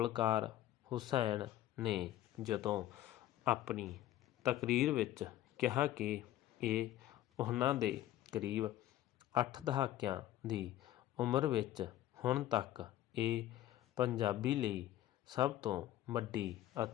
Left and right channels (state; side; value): quieter; right; 13.6 dB